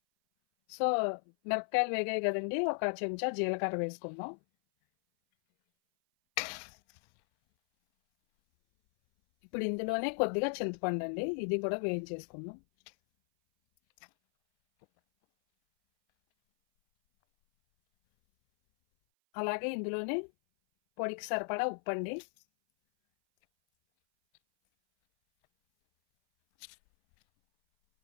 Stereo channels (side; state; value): right; silent; 55 dB below the other